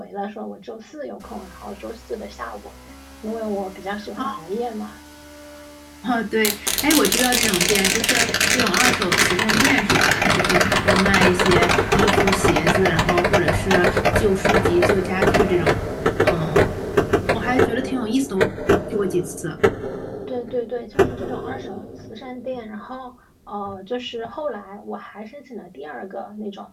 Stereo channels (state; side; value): identical; both; correlation 1.00